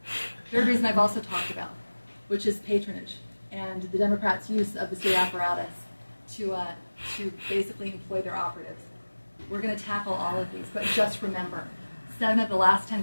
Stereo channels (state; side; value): inverted; both; correlation -1.00